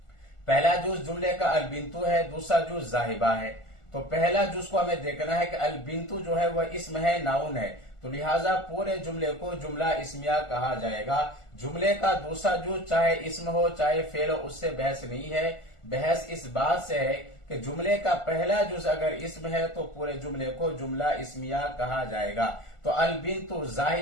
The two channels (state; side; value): late; right; 1.4 ms